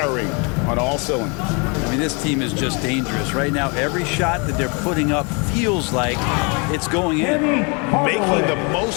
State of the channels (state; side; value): quieter; right; 32.5 dB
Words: on all cylinders. I mean, this team is just dangerous. Right now, every shot that they're putting up feels like it's going in. Making the